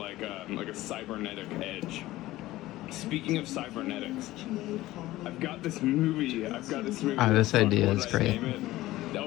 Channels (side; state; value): right; quieter; 16.8 dB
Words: a cybernetic edge. Speaking of cybernetics, I've got this movie. Oh, this idea is great.